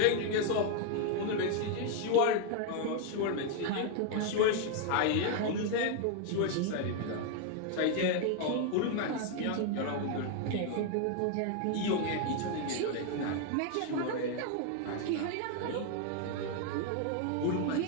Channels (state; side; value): different; both; correlation 0.00